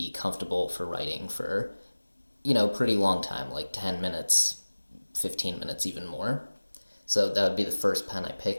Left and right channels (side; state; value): both; inverted; correlation -1.00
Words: comfortable for writing for, pretty long time, like 10 minutes, 15 minutes, even more. So that would be the first pen I